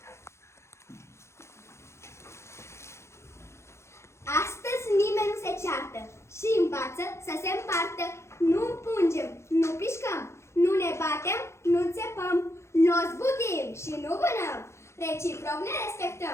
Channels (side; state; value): right; late; 0.13 ms